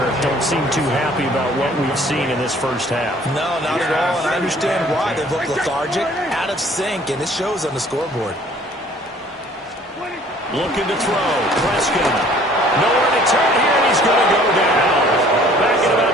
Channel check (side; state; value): both; normal; correlation 0.55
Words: don't seem too happy about what we've seen in this first half. No, not at all, and I understand why. They look lethargic, out of sync, and it shows on the scoreboard. Looking to throw. Prescott. Nowhere to turn here, and he's going to go down. Back at about